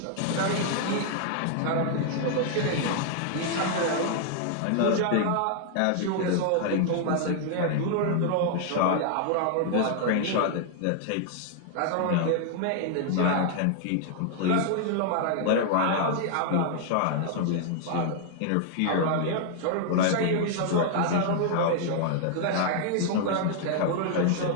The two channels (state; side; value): different; both; correlation 0.00